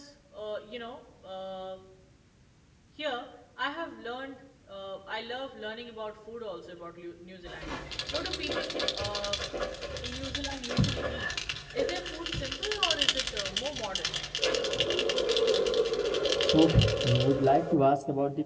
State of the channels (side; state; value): both; identical; correlation 1.00